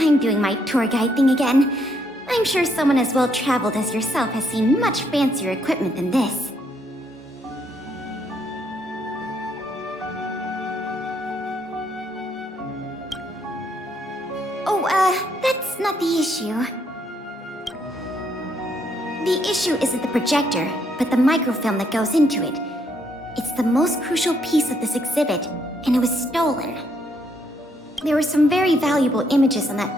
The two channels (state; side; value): normal; both; correlation 0.73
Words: doing my tour guide thing again. I'm sure someone as well traveled as yourself has seen much fancier equipment than this. That's not the issue. The issue isn't the projector, but the microfilm that goes into it. It's the most crucial piece of this exhibit, and it was stolen. There were some very valuable images on